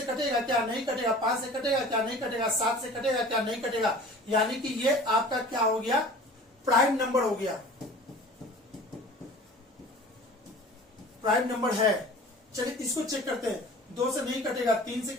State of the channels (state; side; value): normal; both; correlation 0.42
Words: कटेगा क्या? नहीं कटेगा। 5 से कटेगा क्या? नहीं कटेगा। 7 से कटेगा क्या? नहीं कटेगा। यानी कि ये आपका क्या हो गया? प्राइम नंबर हो गया, प्राइम नंबर है। चलिए इसको चेक करते हैं, 2 से नहीं कटेगा, 3 से